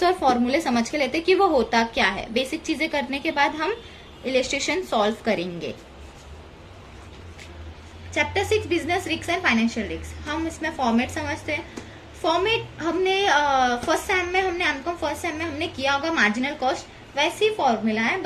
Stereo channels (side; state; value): both; identical; correlation 1.00